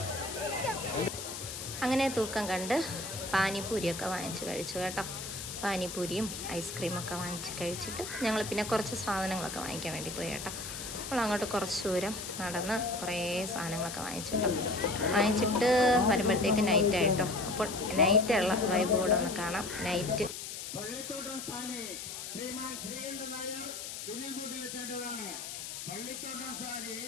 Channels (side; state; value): left; noise; hiss, 8 dB below the sound